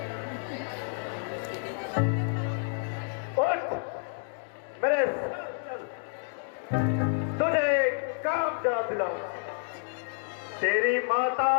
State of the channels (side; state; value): right; silent; 58 dB below the other